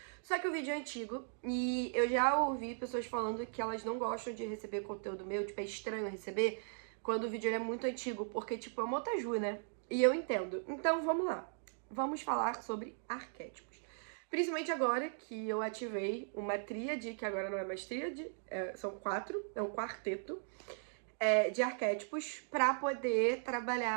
Só que o vídeo é antigo e eu já ouvi pessoas falando que elas não gostam de receber conteúdo meu, tipo, é estranho receber quando o vídeo é muito antigo, porque, tipo, é uma otaju, né? E eu entendo. Então, vamos lá. Vamos falar sobre arquétipos. Principalmente agora que eu ativei uma tríade, que agora não é mais tríade, são 4, é um quarteto de arquétipos para poder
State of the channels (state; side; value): silent; left; digital silence